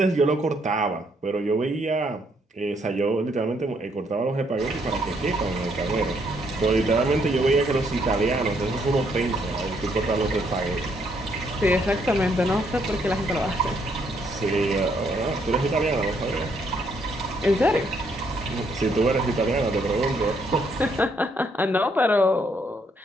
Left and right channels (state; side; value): normal; both; correlation 0.71